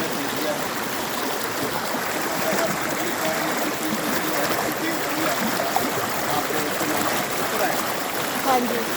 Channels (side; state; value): both; identical; correlation 1.00